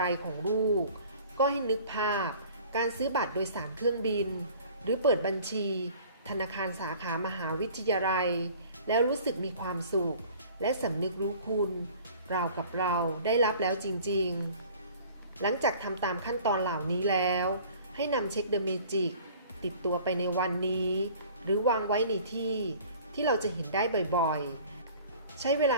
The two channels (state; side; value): inverted; both; correlation -0.49